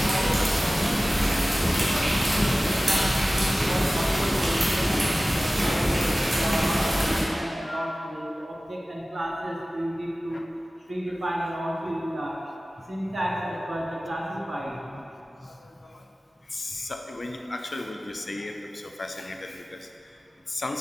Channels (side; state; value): both; normal; correlation 0.97